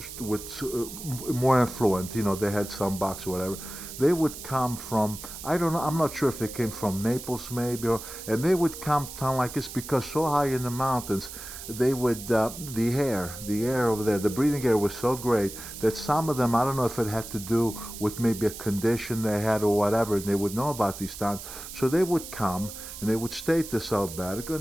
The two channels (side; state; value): right; noise; hiss, 11 dB below the sound